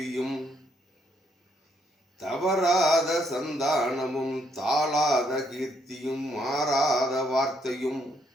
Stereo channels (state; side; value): normal; both; correlation 0.72